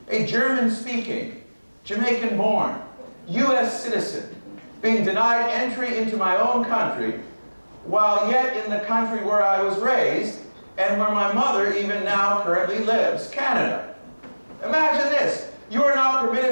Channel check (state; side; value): inverted; both; correlation -1.00